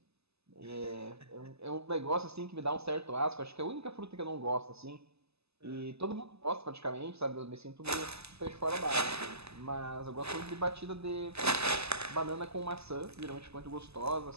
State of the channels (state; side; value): late; left; 0.79 ms